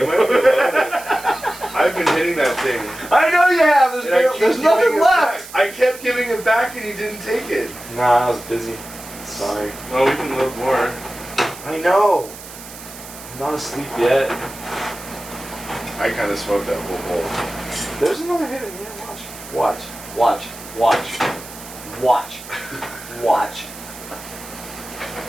I've been hitting that thing. I know you have. There's nothing left. I kept giving it back, and you didn't take it. Nah, I was busy. Sorry. Well, we can load more. I know. I'm not asleep yet. I kind of smoked that whole bowl. There's another hit in here. Watch. Watch. Watch. Watch. Watch.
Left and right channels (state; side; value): noise; right; hiss, 15 dB below the sound